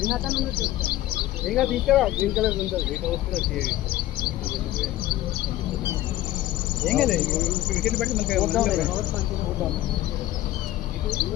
ఇంకా తీసుకురా గ్రీన్ కలర్ ఉంటుంది ఏం కదా వికెట్ పెట్టి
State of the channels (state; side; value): quieter; right; 14.9 dB